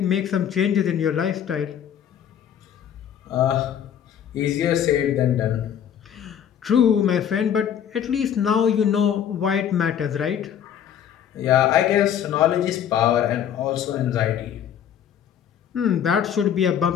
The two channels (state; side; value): quieter; right; 9.2 dB